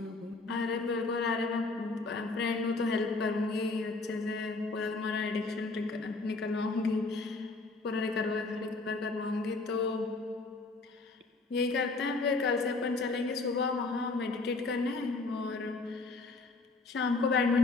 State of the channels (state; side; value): quieter; right; 3.6 dB